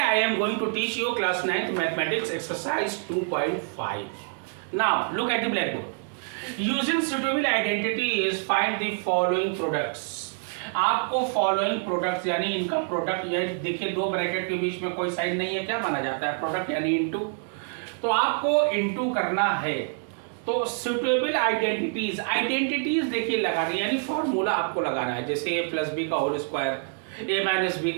am going to teach you class 9th mathematics exercise 2.5. Now look at the blackboard. Using suitable identity is find the following products. आपको following products यानी इनका product, यानी देखिए दो bracket के बीच में कोई sign नहीं है, क्या माना जाता है? प्रोडक्ट यानी इनटू। तो आपको इनटू करना है तो सुटेबल आइडेंटिटीज देखिए लगानी, यानी फॉर्मूला आपको लगाना है। जैसे ए प्लस बी का होल स्क्वायर, ए माइनस बी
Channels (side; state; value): left; silent; 61 dB below the other